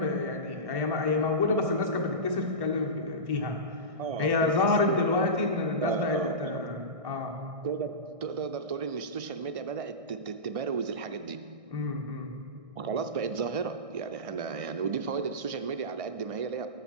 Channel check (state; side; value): late; left; 1.6 ms